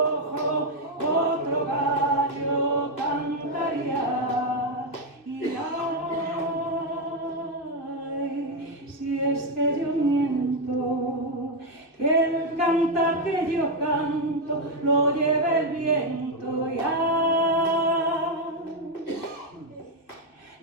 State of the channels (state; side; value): late; right; 2.6 ms